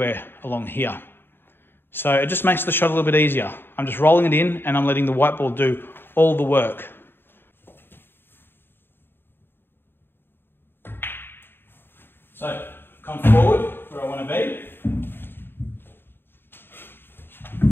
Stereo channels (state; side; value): late; right; 0.10 ms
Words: along here. So it just makes the shot a little bit easier. I'm just rolling it in and I'm letting the white ball do all the work. So, come forward where I want to be.